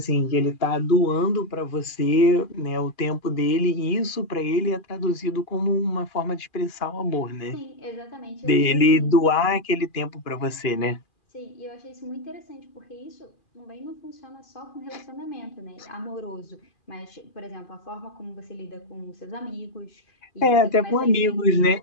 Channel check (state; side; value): late; right; 2.4 ms